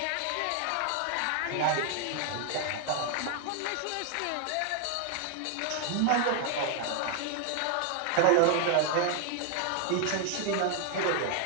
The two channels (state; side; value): different; both; correlation 0.00